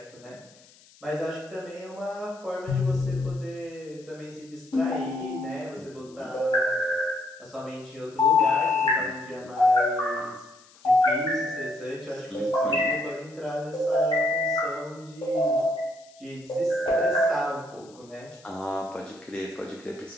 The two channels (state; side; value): noise; left; hiss, 26 dB below the sound